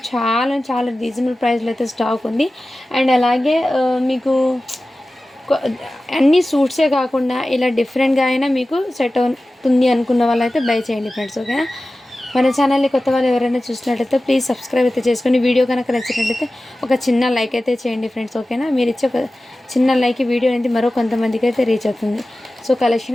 చాలా రీజనబుల్ ప్రైస్లో అయితే స్టాక్ ఉంది. అండ్ అలాగే మీకు అన్ని సూట్సే కాకుండా ఇలా డిఫరెంట్గా అయినా మీకు సెట్ అవుతుంది అనుకున్న వాళ్ళైతే బై చేయండి ఫ్రెండ్స్. ఓకేనా? మన ఛానల్ని కొత్త వాళ్ళు ఎవరైనా చూసినట్లయితే ప్లీజ్ సబ్స్క్రైబ్ అయితే చేసుకొని, వీడియో కనుక నచ్చినట్లయితే ఒక చిన్న లైక్ అయితే చేయండి ఫ్రెండ్స్. ఓకేనా? మీరు ఇచ్చే ఒక చిన్న లైక్ వీడియో అనేది మరో కొంతమందికి అయితే రీచ్ అవుతుంది. సో కలెక్షన్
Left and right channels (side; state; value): both; normal; correlation 0.96